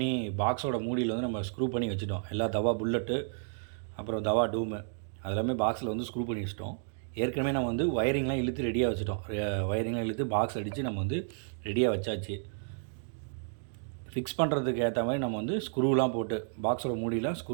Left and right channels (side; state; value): left; silent; digital silence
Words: பாக்ஸோட மூடியில் வந்து நம்ம ஸ்க்ரூ பண்ணி வச்சுட்டோம். எல்லா தவா புல்லட்டு, அப்புறம் தவா டூமு அதெல்லாமே பாக்ஸில் வந்து ஸ்க்ரூ பண்ணி வச்சுட்டோம். ஏற்கனவே நம்ம வந்து ஒயரிங்லாம் இழுத்து ரெடியாக வச்சுட்டோம். ஒயரிங்லாம் இழுத்து பாக்ஸ் அடித்து நம்ம வந்து ரெடியாக வச்சாச்சு. ஃபிக்ஸ் பண்ணுறதுக்கு ஏற்ற மாதிரி நம்ம வந்து ஸ்க்ரூலாம் போட்டு பாக்ஸோட மூடியில்